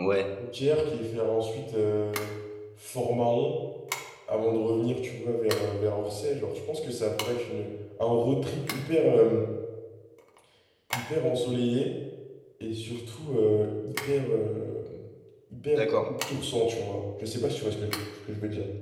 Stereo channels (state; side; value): identical; both; correlation 1.00